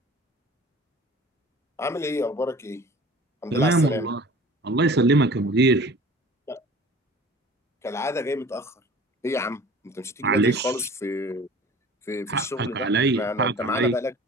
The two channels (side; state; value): both; normal; correlation 0.44